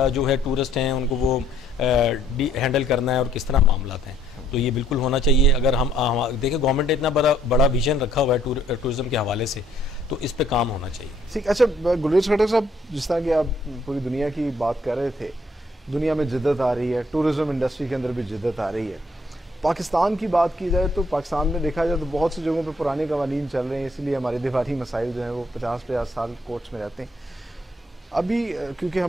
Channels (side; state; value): both; normal; correlation 0.67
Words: جو ہے ٹورسٹ ہیں ان کو وہ ہینڈل کرنا ہے اور کس طرح معاملات ہیں. تو یہ بالکل ہونا چاہیے. اگر ہم دیکھیں گورنمنٹ نے اتنا بڑا ویژن رکھا ہوا ہے ٹورزم کے حوالے سے, تو اس پہ کام ہونا چاہیے. ٹھیک. اچھا گلریز خٹک صاحب, جس طرح کہ آپ پوری دنیا کی بات کر رہے تھے, دنیا میں جدت آ رہی ہے, ٹورزم انڈسٹری کے اندر بھی جدت آ رہی ہے. پاکستان کی بات کی جائے تو پاکستان میں دیکھا جائے تو بہت سی جگہوں پہ پرانے قوانین چل رہے ہیں, اس لیے ہمارے دفاعی مسائل جو ہیں وہ 50 سال کورٹس میں رہتے ہیں. ابھی کیونکہ